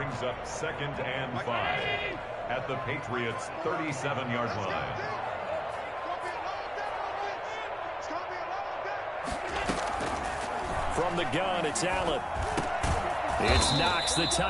up second and 5 at the Patriots' 37-yard line. From the gun, it's Allen. It's Knox, the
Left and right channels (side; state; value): both; identical; correlation 1.00